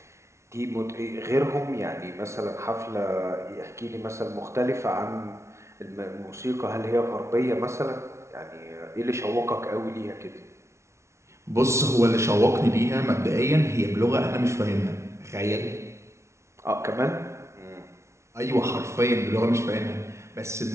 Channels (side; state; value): left; late; 0.13 ms